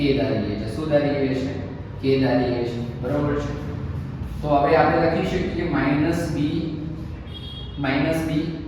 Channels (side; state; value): both; identical; correlation 1.00